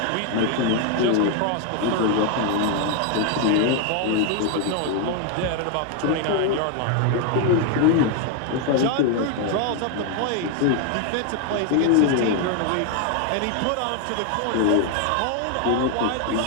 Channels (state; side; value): different; both; correlation 0.01